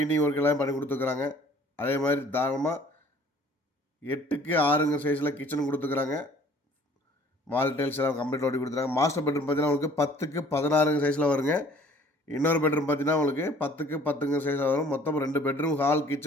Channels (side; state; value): both; normal; correlation 0.54